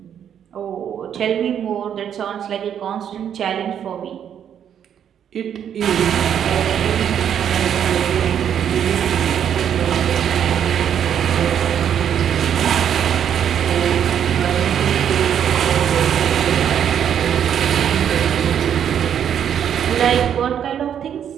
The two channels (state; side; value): quieter; left; 9.0 dB